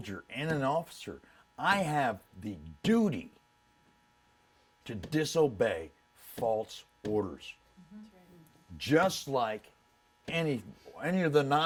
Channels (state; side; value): identical; both; correlation 1.00